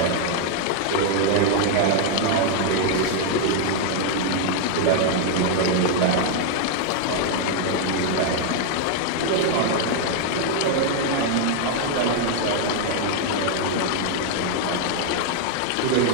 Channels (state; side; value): different; both; correlation 0.00